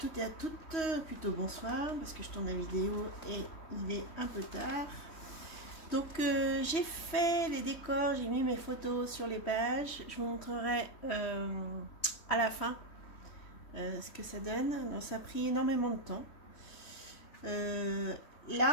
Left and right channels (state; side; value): late; right; 3.1 ms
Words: et à toutes, plutôt bonsoir parce que je tourne la vidéo et il est un peu tard. Donc j'ai fait les décors, j'ai mis mes photos sur les pages, je vous montrerai à la fin ce que ça donne. Donc, ça a pris énormément de temps.